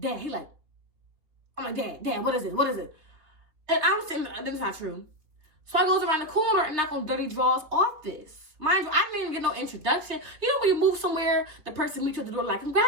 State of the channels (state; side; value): late; left; 3.5 ms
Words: He like, I'm like, Dad, what is it? And I'm sitting there, this is not true. So I goes around the corner and knock on Dirty Draw's office. Mind you, I didn't even get no introduction. You know when you move somewhere, the person meets you at the door like,